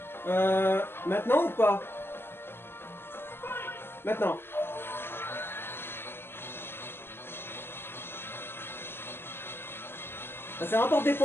Maintenant ou pas? Maintenant. Ça rapporte des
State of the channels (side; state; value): right; late; 0.11 ms